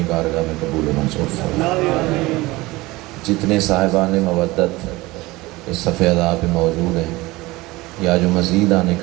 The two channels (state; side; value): quieter; left; 20.7 dB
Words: بارگاہ میں قبول و منظور فرمائے۔ جتنے صاحبان مودت اس صف ادا پہ موجود ہیں یا جو مزید آنے